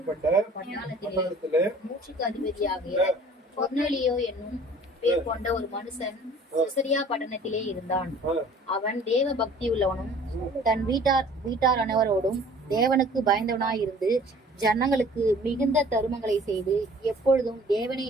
பட்டாளத்திலே மூச்சுக்கு அதிபதியாகிய கொர்நேலியோ என்னும் பேர் கொண்ட ஒரு மனுஷன் செசரியா பட்டணத்திலே இருந்தான். அவன் தேவ பக்தி உள்ளவனும் தன் வீட்டார் அனைவரோடும் தேவனுக்கு பயந்தவனாயிருந்து ஜனங்களுக்கு மிகுந்த தருமங்களை செய்து எப்பொழுதும் தேவனை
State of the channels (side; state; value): both; normal; correlation 0.50